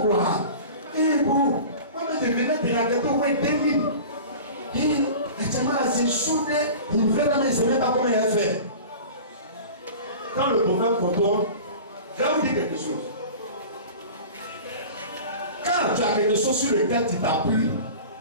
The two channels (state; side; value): inverted; both; correlation -0.37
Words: quoi. Il est beau. Moi, je venais de la gâteau au moins 2000. C'est soudé, il fait la main, il ne sait même pas comment il a fait. Quand le prophète contrôle, je vais vous dire quelque chose. Quand tu as quelque chose sur lequel tu t'appuies,